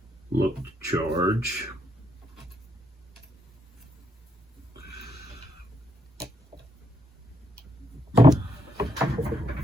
look to charge.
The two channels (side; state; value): both; normal; correlation 0.77